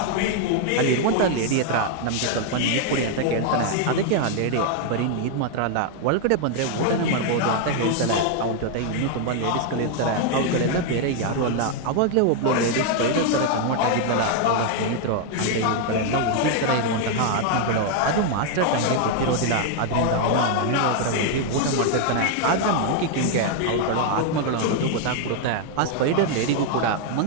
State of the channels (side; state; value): both; different; correlation 0.00